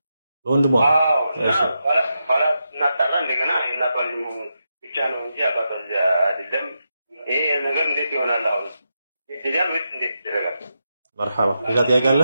በወንድሟ አዎ። ኋላ እናጣራ እንደገና የእናቷ ልጅ መሆኑን ብቻ ነው እንጂ አባቷ ልጅ አይደለም። ይሄ ነገር እንዴት ይሆናል? አሁን ይደረጋል ወይስ እንዴት ይደረጋል? መርሐባ። ሌላ ጥያቄ አለ?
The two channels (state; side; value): inverted; both; correlation -0.86